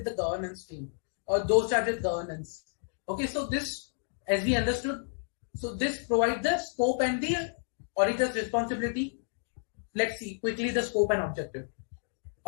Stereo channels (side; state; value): right; silent; 57 dB below the other